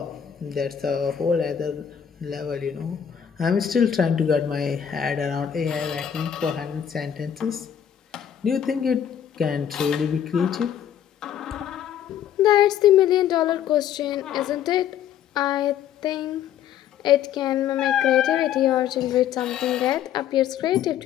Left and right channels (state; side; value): quieter; right; 9.3 dB